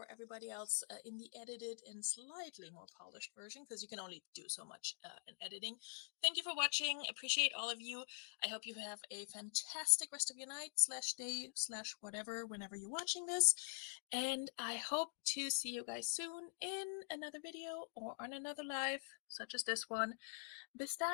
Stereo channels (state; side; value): silent; right; digital silence